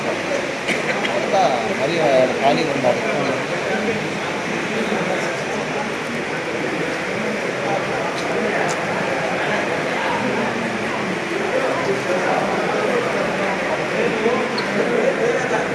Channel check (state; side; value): identical; both; correlation 1.00